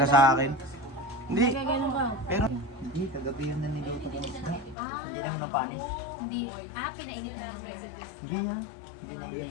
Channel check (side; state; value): right; drops out; at 4.8 s